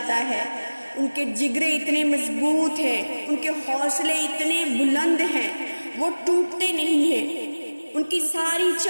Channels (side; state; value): both; inverted; correlation -1.00